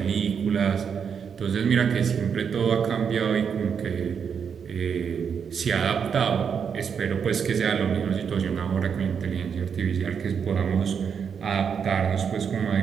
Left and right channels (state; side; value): quieter; left; 6.9 dB